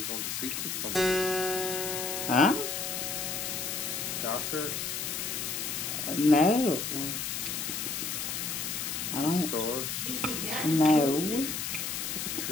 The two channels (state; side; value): noise; left; hiss, 3 dB below the sound